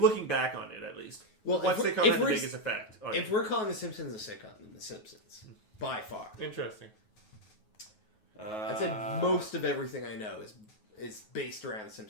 back on it, at least. Well, what sitcom had the biggest effect on if we're calling The Simpsons a sitcom, then The Simpsons. By far. Interesting. I'd say most of everything I know is based around The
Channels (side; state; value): right; late; 9.4 ms